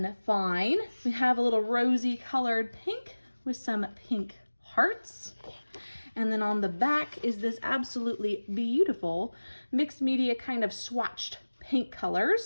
Fine. We have a little rosy colored pink with some pink hearts. And then on the back is this absolutely beautiful mixed media kind of swatched pink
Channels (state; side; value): inverted; both; correlation -1.00